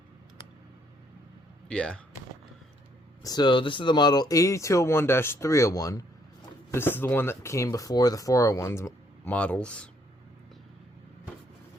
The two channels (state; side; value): normal; both; correlation 0.69